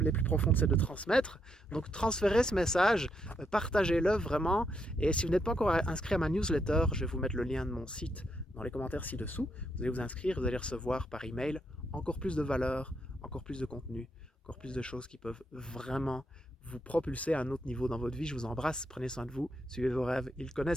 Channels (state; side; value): normal; both; correlation 0.78